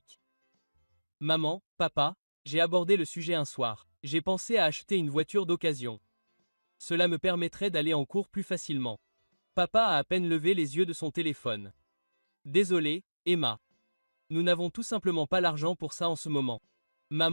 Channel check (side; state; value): both; inverted; correlation -1.00